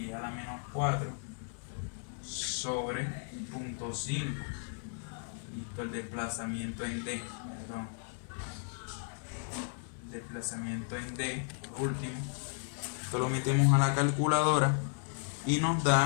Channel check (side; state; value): right; silent; 55 dB below the other